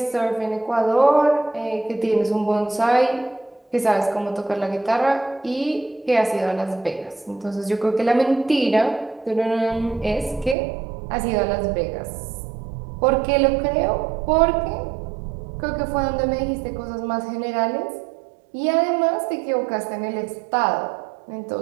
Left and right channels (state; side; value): drops out; left; at 10.6 s